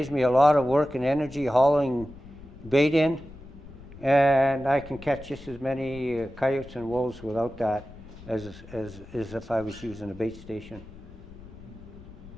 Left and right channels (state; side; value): noise; left; rumble, 18 dB below the sound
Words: me a lot of work and energy hauling bait in, and I can catch just as many coyotes and wolves without that as if I was using a bait station.